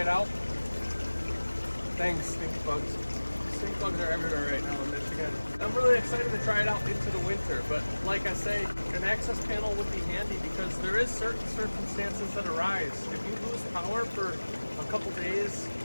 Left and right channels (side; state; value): both; inverted; correlation -1.00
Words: out. Thanks, stink bugs. Stink bugs are everywhere right now in Michigan. I'm really excited to try it out into the winter, but like I say, an access panel would be handy because there is certain circumstances that arise. If you lose power for a couple days